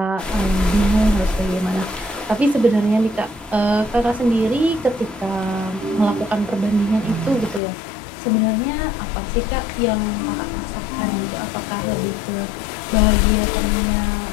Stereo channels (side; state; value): right; drops out; at 7.6 s